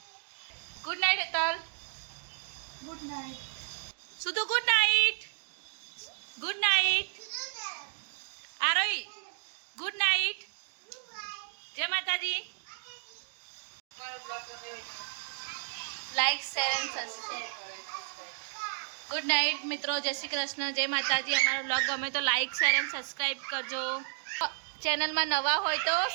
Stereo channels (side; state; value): left; silent; digital silence